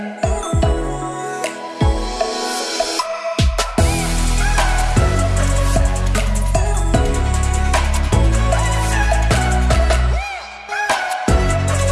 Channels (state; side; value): identical; both; correlation 1.00